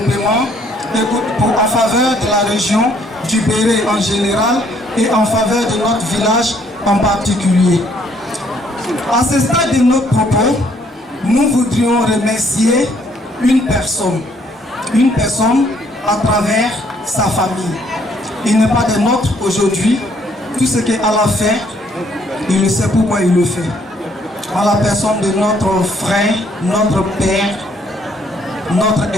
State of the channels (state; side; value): normal; both; correlation 0.66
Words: en faveur de la région du Béré en général et en faveur de notre village en particulier. À ce stade de notre propos, nous voudrions remercier une personne à travers sa famille. Il n'est pas des nôtres aujourd'hui. Tout ce qu'Allah fait, il sait pourquoi il le fait. À la personne de notre frère, notre père, notre